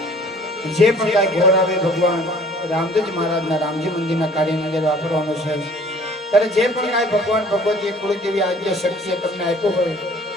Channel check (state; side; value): normal; both; correlation 0.52